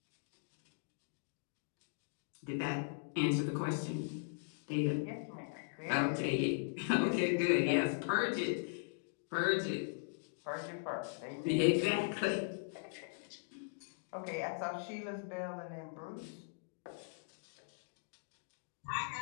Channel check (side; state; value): right; silent; digital silence